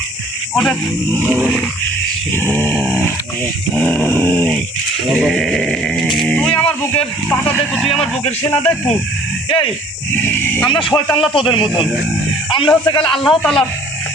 ওঠে। তুই আমার বুকের পাতা দেখু, তুই আমার বুকের সেনা দেখু। এই আমরা শয়তানরা তোদের মতন, আমরা হচ্ছে গেলে আল্লাহ তাআলা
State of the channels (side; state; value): both; normal; correlation 0.54